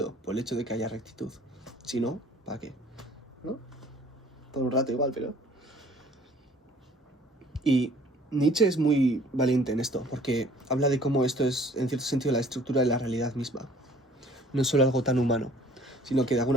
por el hecho de que haya rectitud. Si no, ¿para qué? ¿No? Por un rato igual, pero... Y Nietzsche es muy valiente en esto, porque habla de cómo esto es, en cierto sentido, la estructura de la realidad misma. No es solo algo tan humano, sino que de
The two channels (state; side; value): normal; both; correlation 0.53